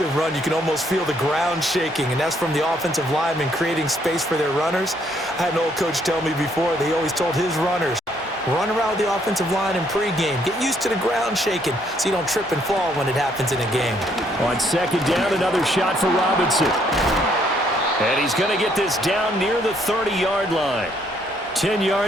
run, you can almost feel the ground shaking, and that's from the offensive linemen creating space for their runners. I had an old coach tell me before, they always told his runners, run around the offensive line in pregame. Get used to the ground shaking so you don't trip and fall when it happens in a game. On 2nd down, another shot for Robinson. And he's going to get this down near the 30-yard line. 10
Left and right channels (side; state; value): both; normal; correlation 0.69